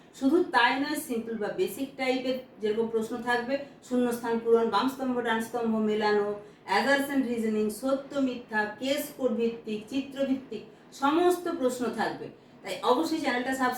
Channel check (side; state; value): both; identical; correlation 1.00